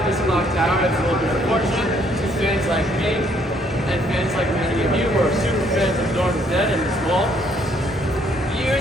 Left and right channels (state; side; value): normal; both; correlation 0.67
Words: this clock tower. It's a little bit unfortunate to fans like me and fans like many of you who are super fans of Dawn of the Dead and the Small.